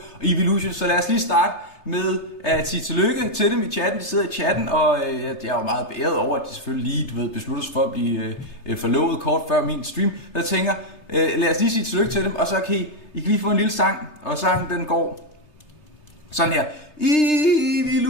Evilutions. Så lad os lige starte med at sige tillykke til dem i chatten. De sidder i chatten, og jeg er jo meget beæret over, at de selvfølgelig lige beslutter sig for at blive forlovet kort før min stream. Jeg tænker, lad os lige sige tillykke til dem, og så kan I kan lige få en lille sang, og sangen den går sådan her.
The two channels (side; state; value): right; late; 3.3 ms